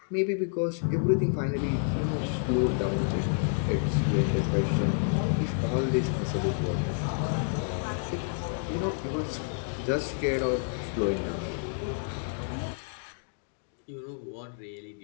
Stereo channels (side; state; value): right; silent; 58 dB below the other